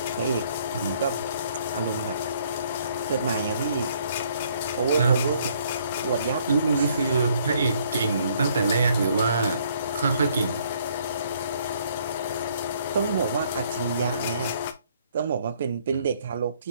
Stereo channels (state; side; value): inverted; both; correlation -0.64